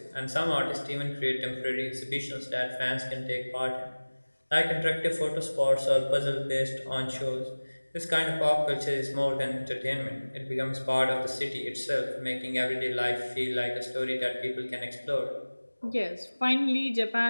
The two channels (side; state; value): both; inverted; correlation -1.00